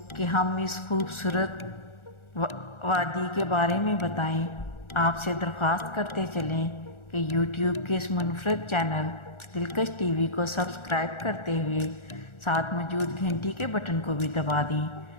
کہ ہم اس خوبصورت وادی کے بارے میں بتائیں، آپ سے درخواست کرتے چلیں کہ یوٹیوب کے اس منفرد چینل دلکش ٹی وی کو سبسکرائب کرتے ہوئے ساتھ موجود گھنٹی کے بٹن کو بھی دبا دیں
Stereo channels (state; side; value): late; right; 1.4 ms